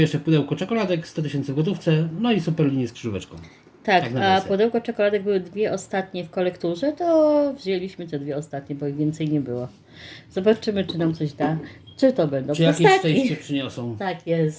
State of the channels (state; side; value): identical; both; correlation 1.00